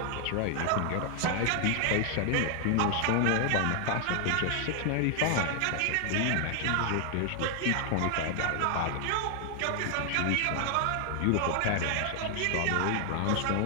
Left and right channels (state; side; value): different; both; correlation 0.00